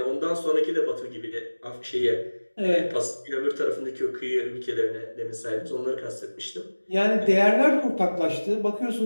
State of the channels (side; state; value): both; inverted; correlation -1.00